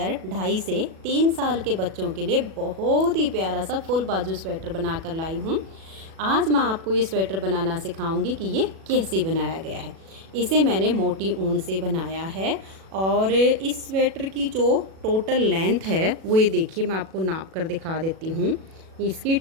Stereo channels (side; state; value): left; late; 37 ms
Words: 2.5 से 3 साल के बच्चों के लिए बहुत ही प्यारा सा फुल बाजू स्वेटर बनाकर लाई हूँ। आज मैं आपको ये स्वेटर बनाना सिखाऊंगी कि ये कैसे बनाया गया है। इसे मैंने मोटी ऊन से बनाया है और इस स्वेटर की जो टोटल लेंथ है वो ये देखिए, मैं आपको नाप कर दिखा देती हूँ। इसकी